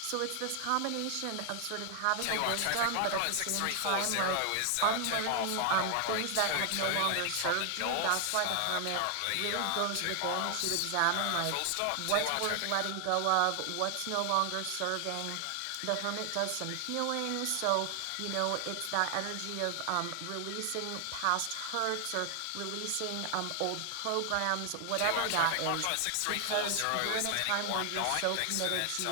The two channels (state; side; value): different; both; correlation 0.00